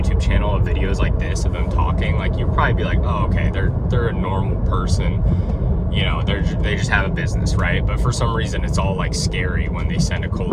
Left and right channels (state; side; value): identical; both; correlation 1.00